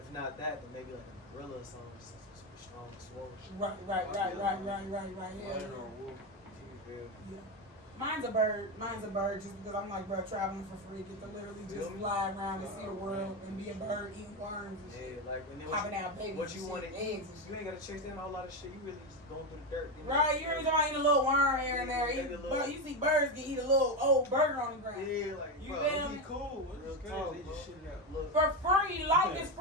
not that, then maybe like a gorilla or something, just super strong and swole. Right. Yeah. Lion or wolf. You feel? Yeah. Mine's a bird. Mine's a bird just because I'm like, bro, traveling for free. Get to literally just fly around and see the world and be a bird eating worms and shit. Yeah, like and then Popping out babies. what you and want shit, to eggs eat, and shit. you ain't gotta chase down a whole lot of shit. You really just going through the dirt. Right, you ain't gonna eat a little worm here and there. Maybe a little- You see birds can eat a little old burger on the ground. Yeah, like You bro, feel It'd me? be cool. Real It's talk, crazy. They just shit it out. Look, For free, life is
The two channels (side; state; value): both; normal; correlation 0.12